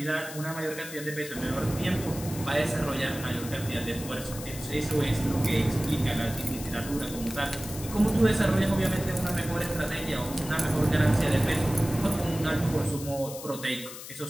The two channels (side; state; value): left; noise; hiss, 12 dB below the sound